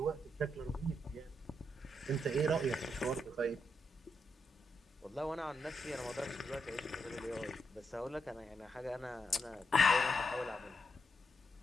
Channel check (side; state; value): both; normal; correlation 0.82